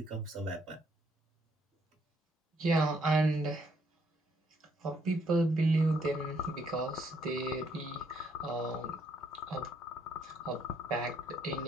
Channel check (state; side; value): normal; both; correlation 0.70